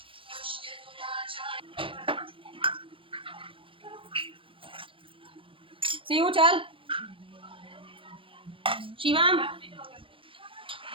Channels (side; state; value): left; late; 0.25 ms